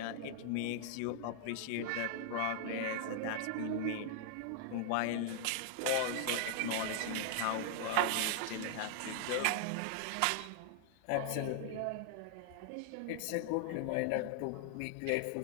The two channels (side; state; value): both; different; correlation -0.01